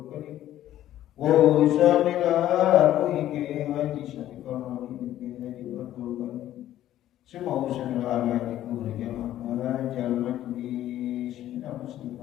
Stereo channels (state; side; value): quieter; right; 12.8 dB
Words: Qadim usan ila ruhi ki haji Syafiqah bin Haji Abdul Qadim semua urusan olahraga itu berjamaah jalan di seminar